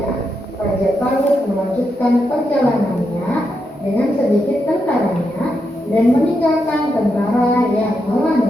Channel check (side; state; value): both; normal; correlation 0.84